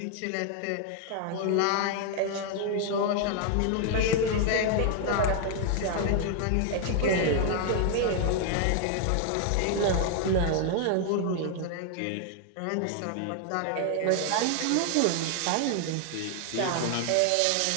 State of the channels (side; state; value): both; different; correlation 0.00